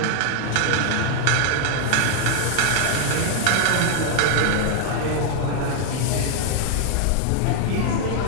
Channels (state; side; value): different; both; correlation 0.00